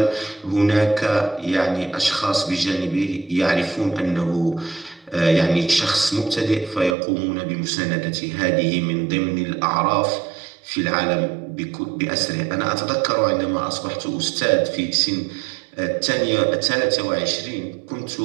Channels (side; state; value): left; drops out; at 7.0 s